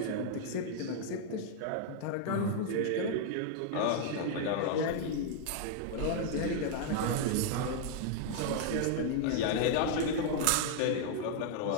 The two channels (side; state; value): both; different; correlation 0.00